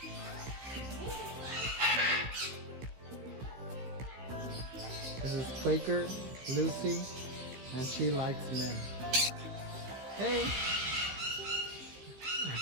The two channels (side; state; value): left; late; 16 ms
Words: This is Quaker Lucy, and she likes men. Hey!